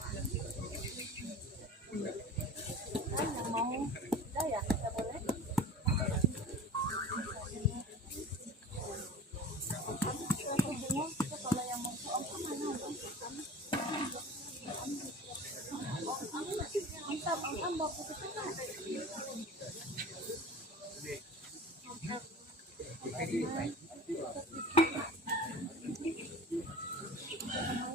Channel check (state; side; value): normal; both; correlation 0.38